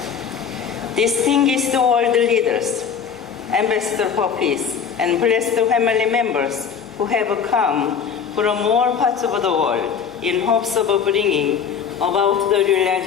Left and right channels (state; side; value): quieter; right; 7.0 dB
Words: Distinguished world leaders, ambassador for peace, and blessed family members who have come from all parts of the world in hopes of bringing about the